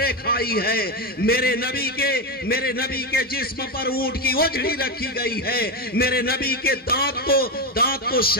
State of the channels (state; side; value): normal; both; correlation 0.12